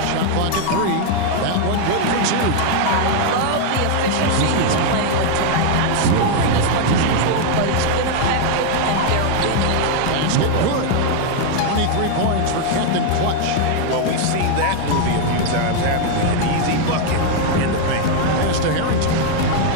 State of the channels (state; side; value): different; both; correlation 0.00